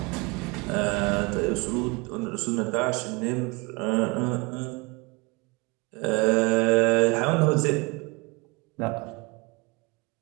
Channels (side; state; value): left; quieter; 27.5 dB